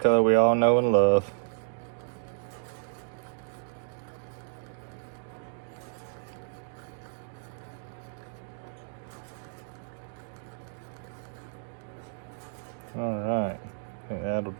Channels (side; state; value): left; silent; digital silence